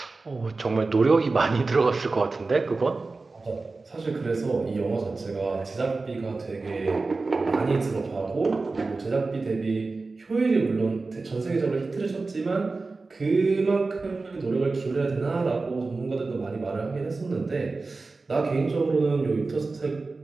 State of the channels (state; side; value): quieter; left; 3.7 dB